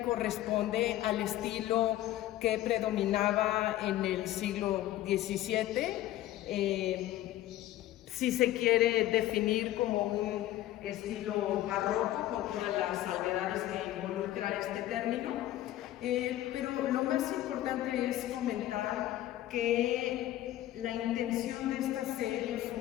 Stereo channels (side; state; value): right; quieter; 14.3 dB